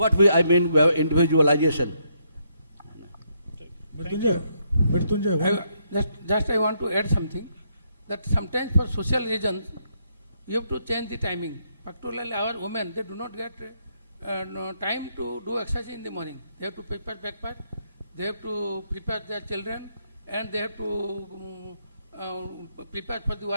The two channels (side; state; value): both; inverted; correlation -0.75